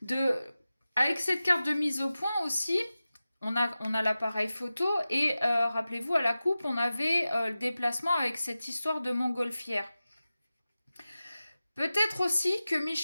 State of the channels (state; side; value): inverted; both; correlation -0.95